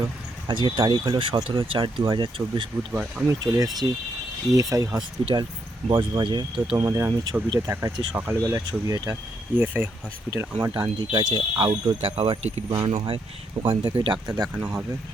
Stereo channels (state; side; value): normal; both; correlation 0.77